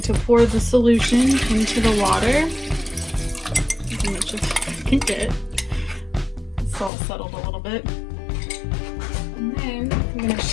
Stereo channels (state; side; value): drops out; right; at 6.9 s